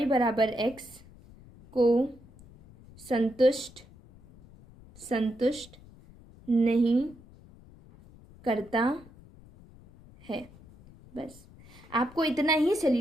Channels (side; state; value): left; noise; rumble, 23 dB below the sound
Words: बराबर x को संतुष्ट नहीं करता है। बस आपको इतना ही